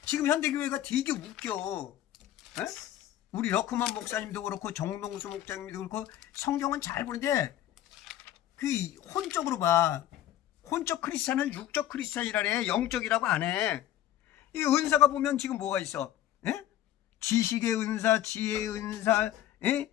지금 현대교회가 되게 웃겨. 에? 우리 러크만 목사님도 그렇고 정동수 목사님도 그렇고 성경은 잘 보는데 그 혼적으로 봐. 혼적 크리스찬은 육적 크리스찬이라래. 영적이라고 안 해. 이 은사가 보면 지금 뭐가 있어? 에? 지식의 은사, 지혜의 은사, 에?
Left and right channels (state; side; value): quieter; right; 12.5 dB